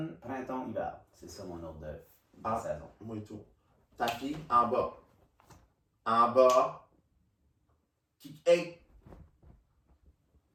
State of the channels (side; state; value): both; identical; correlation 1.00